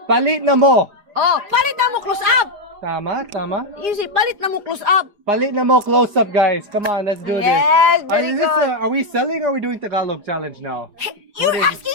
Palit na mo. Oh, palit na mo close-up. Tama. You say, palit na mo close-up. Palit na mo close-up, guys. Come on, let's do this. Yes, very good. Are we selling or are we doing Tagalog challenge now? You're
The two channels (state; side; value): late; left; 4.9 ms